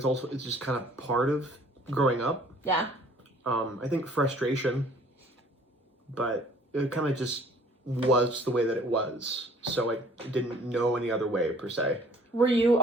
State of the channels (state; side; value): normal; both; correlation 0.55